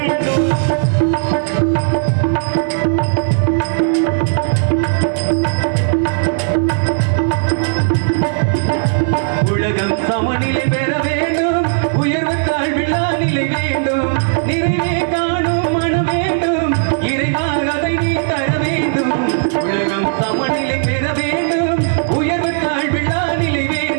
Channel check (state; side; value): silent; left; 69 dB below the other